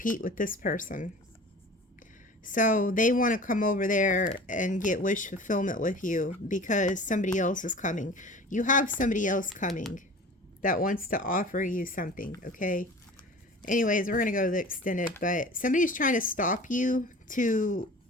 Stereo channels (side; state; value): both; normal; correlation 0.40